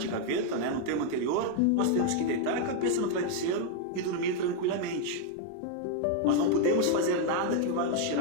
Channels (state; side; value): different; both; correlation 0.00